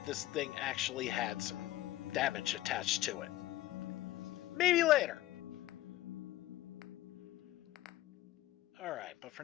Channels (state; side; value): quieter; right; 15.7 dB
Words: this thing actually had some damage attached to it. Maybe later. Alright, but for